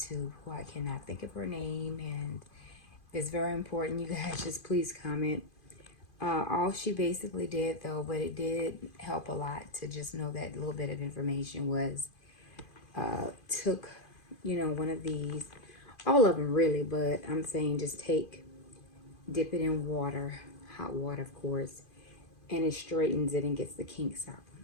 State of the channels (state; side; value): late; right; 2.5 ms